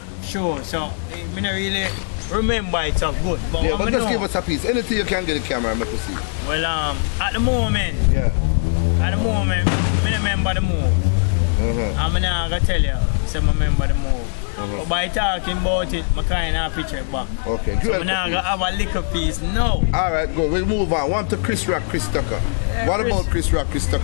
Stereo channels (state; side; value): silent; right; digital silence